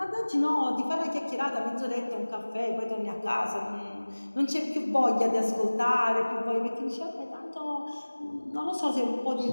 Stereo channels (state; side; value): inverted; both; correlation -1.00